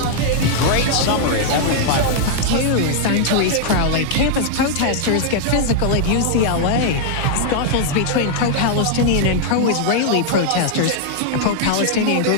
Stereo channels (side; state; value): both; different; correlation -0.01